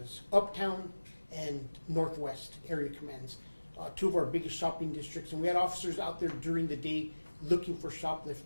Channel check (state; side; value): inverted; both; correlation -1.00